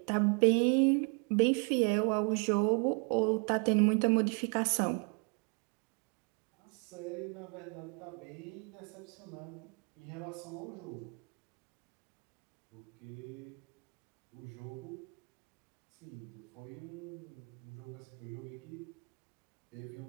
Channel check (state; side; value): quieter; left; 35.9 dB